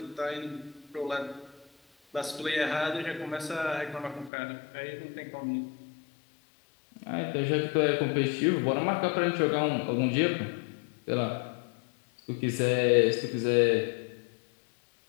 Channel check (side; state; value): right; drops out; at 4.3 s